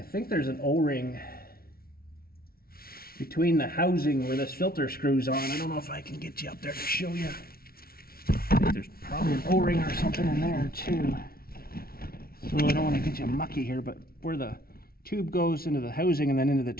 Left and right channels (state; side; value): late; right; 0.44 ms